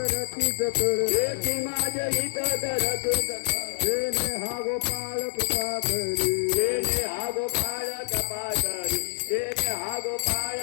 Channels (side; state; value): right; silent; digital silence